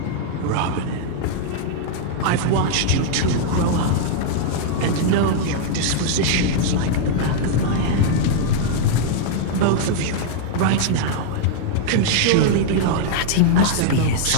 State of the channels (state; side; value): different; both; correlation -0.01